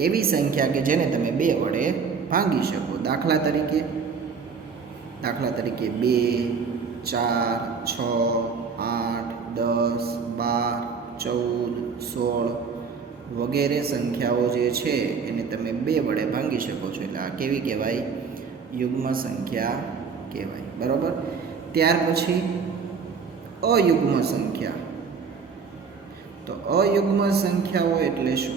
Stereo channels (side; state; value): left; quieter; 5.6 dB